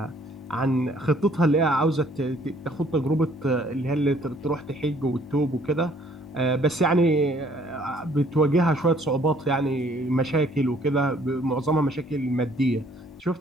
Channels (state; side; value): normal; both; correlation 0.61